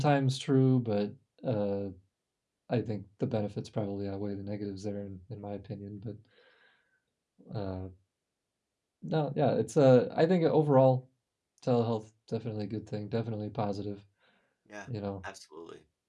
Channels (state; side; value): identical; both; correlation 1.00